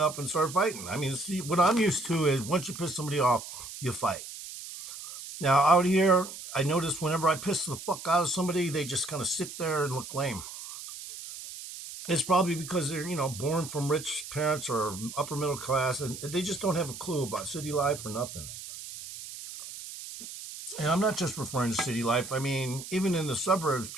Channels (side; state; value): right; noise; hiss, 11 dB below the sound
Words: and started fighting. I mean, see, what I'm used to is once you piss somebody off, you fight. Now, out here, I notice whenever I piss the fuck out of somebody, they just kind of sit there and look lame. It's probably because they're, born from rich parents or upper middle class, and they just don't have a clue about city life or nothing. And I'm not just referring to city life. I mean, even in the suburbs,